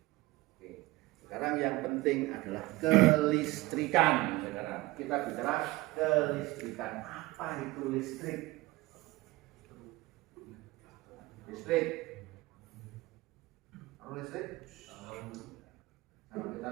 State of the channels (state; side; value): quieter; left; 20.1 dB